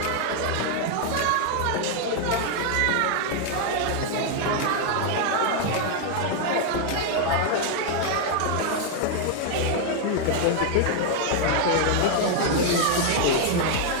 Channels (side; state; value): both; different; correlation 0.00